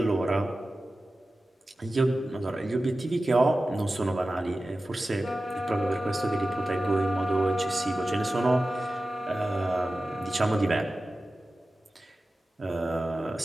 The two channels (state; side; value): normal; both; correlation 0.95